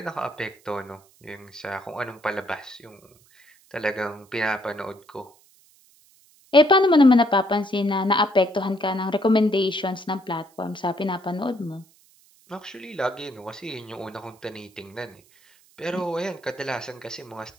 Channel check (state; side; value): noise; right; hiss, 30 dB below the sound